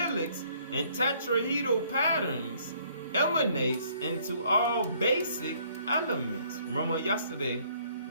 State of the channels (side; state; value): both; inverted; correlation -0.63